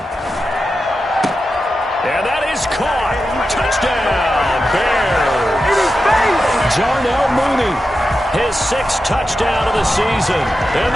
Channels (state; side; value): normal; both; correlation 0.90